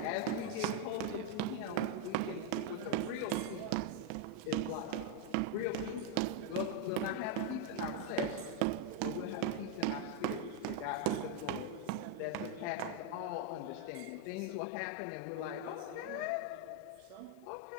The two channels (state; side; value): different; both; correlation 0.01